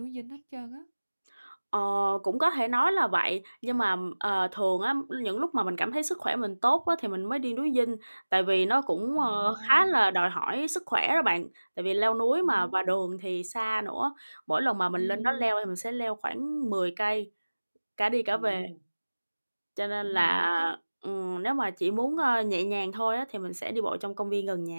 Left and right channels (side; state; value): both; inverted; correlation -1.00